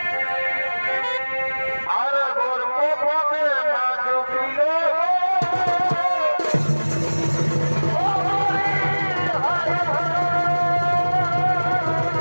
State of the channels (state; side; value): inverted; both; correlation -1.00